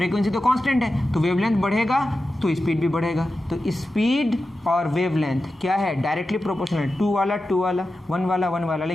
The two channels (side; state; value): both; normal; correlation 0.92